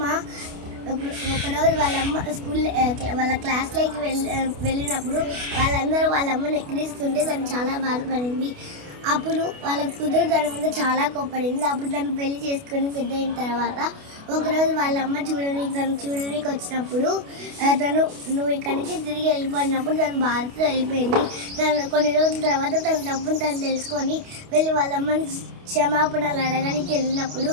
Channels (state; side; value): late; left; 28 ms